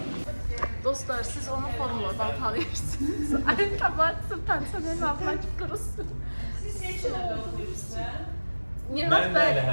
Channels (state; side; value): inverted; both; correlation -1.00